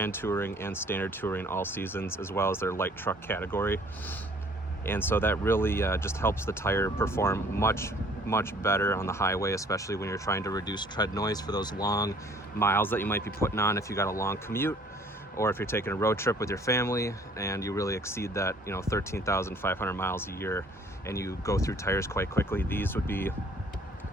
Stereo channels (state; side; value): normal; both; correlation 0.56